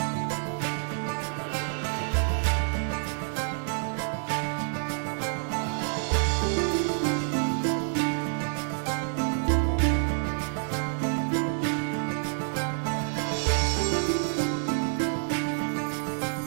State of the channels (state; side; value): silent; left; digital silence